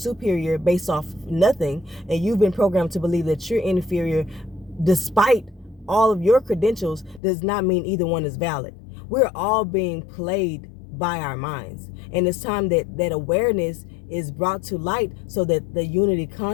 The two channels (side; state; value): right; drops out; at 7.2 s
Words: based off nothing, and you've been programmed to believe that you're inferior despite all of your credentials, does not mean either one is valid. We're all being played by our minds. And it's time that awareness is brought to light so that the unity